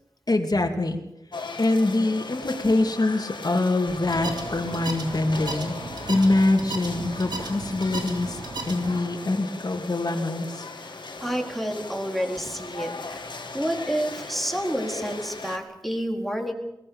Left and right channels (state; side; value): normal; both; correlation 0.88